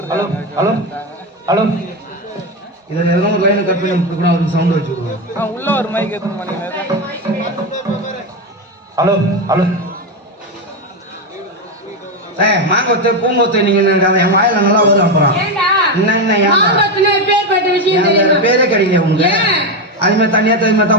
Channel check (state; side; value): normal; both; correlation 0.11